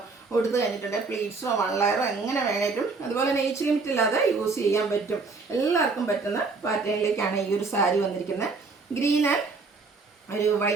കൊടുത്തു കഴിഞ്ഞിട്ടുണ്ടെങ്കിൽ പ്ലീറ്റ്സോ 1 ലെയറോ എങ്ങനെ വേണേലും, അതുപോലെ തന്നെ ഏജ് ലിമിറ്റ് ഇല്ലാതെ യൂസ് ചെയ്യാൻ പറ്റും. എല്ലാവർക്കും പറ്റുന്ന പാറ്റേണിലേക്കാണ് ഈ ഒരു സാരി വന്നിരിക്കുന്നത്. ഗ്രീൻ ആൻഡ് ഒരു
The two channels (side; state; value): left; quieter; 4.2 dB